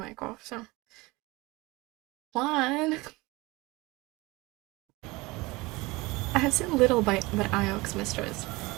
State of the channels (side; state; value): left; quieter; 22.4 dB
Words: off, so. One. I have seen little but Iox, mistress.